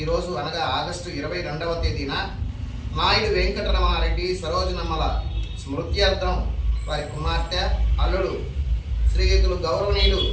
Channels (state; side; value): identical; both; correlation 1.00